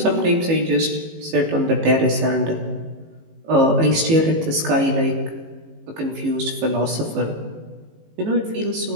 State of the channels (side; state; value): left; late; 18 ms